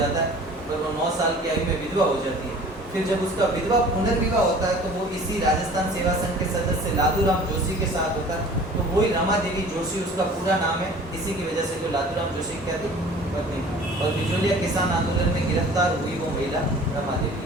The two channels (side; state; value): both; normal; correlation 0.46